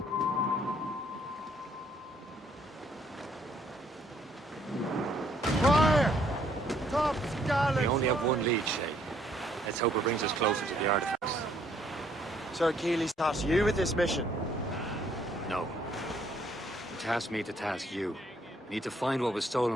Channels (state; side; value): normal; both; correlation 0.66